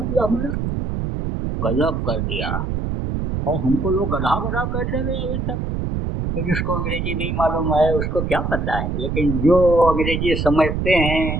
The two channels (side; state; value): right; noise; rumble, 2 dB below the sound